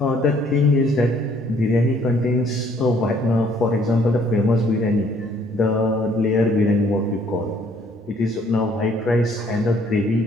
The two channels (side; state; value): both; normal; correlation 0.62